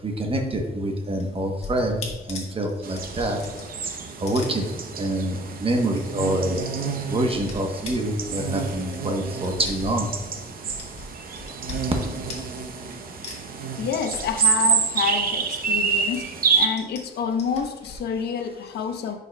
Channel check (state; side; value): normal; both; correlation 0.23